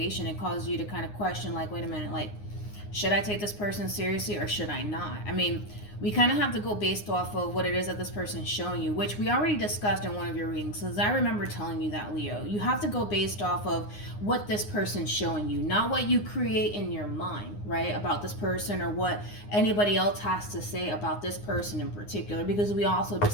It causes you to kind of question, like, wait a minute, like, should I take this person seriously or should I not? I mean, we kind of have to go based off of what it is that this person is showing you, which we already discussed in one of your readings. Because I remember telling you that, Leo. You have to go based off of what this person's showing you, not what you create in your mind, right, about this person or what anybody else has to say about this person in particular, because we also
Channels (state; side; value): late; right; 9.7 ms